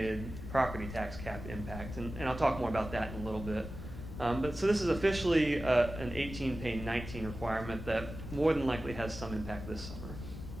property tax cap impact. And I'll talk more about that in a little bit. But so this is officially an 18 pay 19 requirement that more than likely has some impact this summer.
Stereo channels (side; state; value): left; noise; rumble, 10 dB below the sound